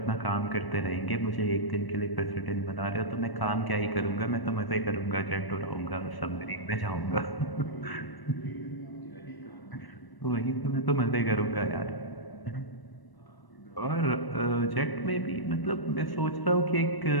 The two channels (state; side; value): late; right; 1.0 ms